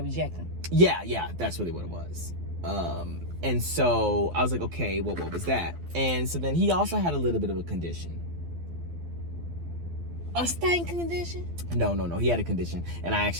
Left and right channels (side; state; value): left; late; 12 ms